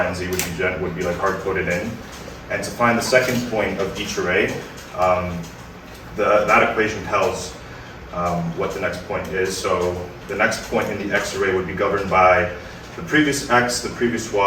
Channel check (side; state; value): both; identical; correlation 1.00